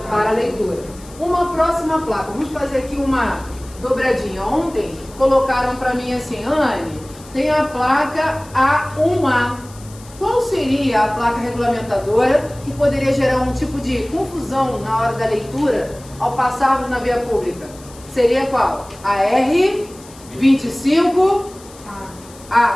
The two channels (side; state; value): left; noise; hiss, 21 dB below the sound